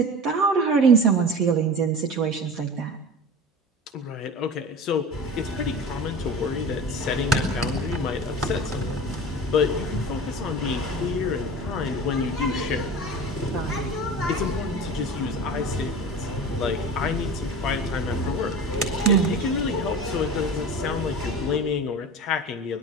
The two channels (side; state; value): both; normal; correlation 0.34